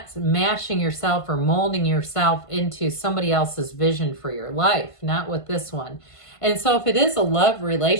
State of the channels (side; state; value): right; late; 1.5 ms